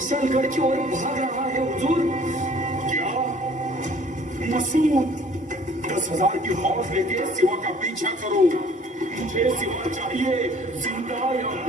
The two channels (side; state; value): both; normal; correlation 0.54